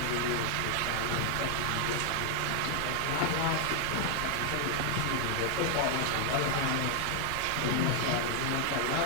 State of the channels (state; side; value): different; both; correlation 0.00